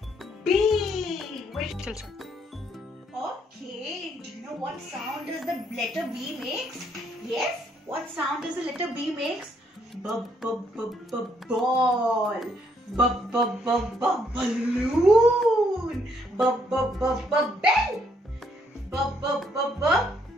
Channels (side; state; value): both; normal; correlation 0.71